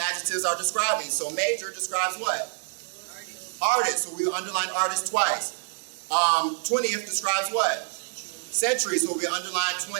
are describing. So major describes what? Artist. So we would underline artist twice. 20th describes what? Century. So we underline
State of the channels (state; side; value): silent; left; digital silence